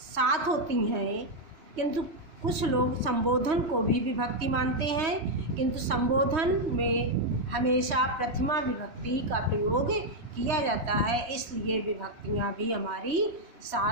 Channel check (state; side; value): late; left; 3.1 ms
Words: होती हैं, किंतु कुछ लोग संबोधन को भी विभक्ति मानते हैं, किंतु संबोधन में हमेशा प्रथमा विभक्ति का प्रयोग किया जाता है, इसलिए विभक्तियाँ भी हमारी